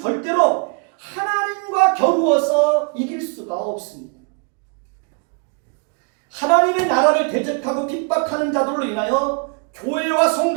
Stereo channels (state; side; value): quieter; left; 34.8 dB